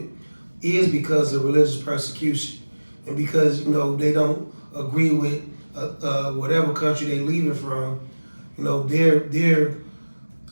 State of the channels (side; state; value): both; inverted; correlation -1.00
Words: is because of religious persecution. And because, they don't agree with whatever country they leaving from, their